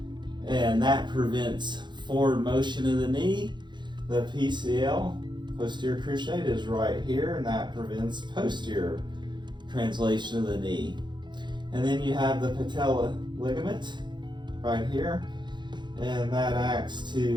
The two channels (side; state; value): left; late; 0.22 ms